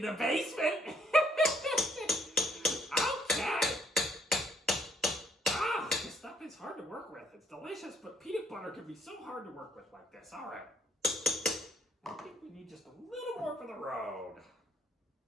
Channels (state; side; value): normal; both; correlation 0.66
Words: the basement. Okay. Ah, this stuff is hard to work with. It's delicious, but peanut butter can be so hard to work with like this. All right. I think we need just a little more for the road.